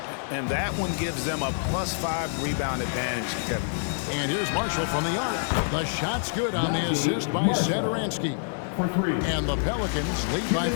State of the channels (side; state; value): right; silent; digital silence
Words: And that one gives them a +5 rebound advantage, Kevin. And here's Marshall from the arc. The shot's good on the assist by Satoransky. for 3. And the Pelicans lead by